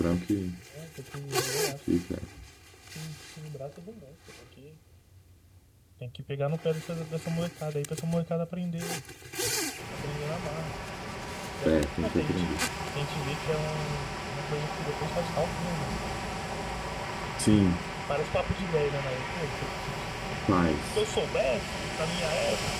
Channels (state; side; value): identical; both; correlation 1.00